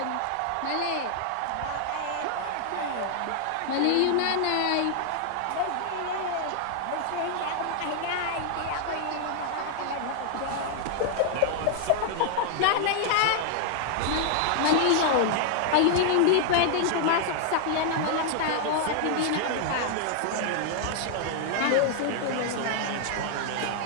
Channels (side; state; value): both; different; correlation 0.00